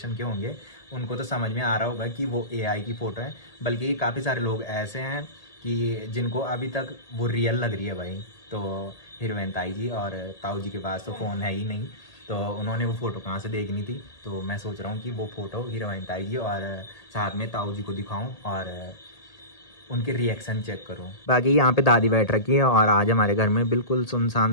के होंगे उनको तो समझ में आ रहा होगा कि वो AI की फ़ोटो है। बल्कि काफ़ी सारे लोग ऐसे हैं कि जिनको अभी तक वो रियल लग रही है भाई। तो हीरोइन ताई जी और ताऊ जी के पास तो फ़ोन है ही नहीं, तो उन्होंने वो फ़ोटो कहाँ से देखनी थी। तो मैं सोच रहा हूँ कि वो फ़ोटो हीरोइन ताई जी और साथ में ताऊ जी को दिखाऊँ और उनके रिएक्शन चेक करूँ। बाकी यहाँ पे दादी बैठ रखी है, और आज हमारे घर में बिल्कुल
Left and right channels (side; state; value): right; late; 1.8 ms